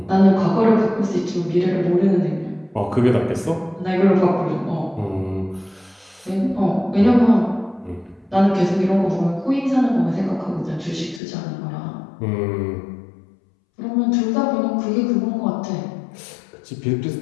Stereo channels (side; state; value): right; drops out; at 11.2 s